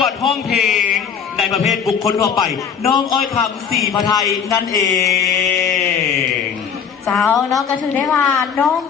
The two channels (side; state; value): right; quieter; 7.1 dB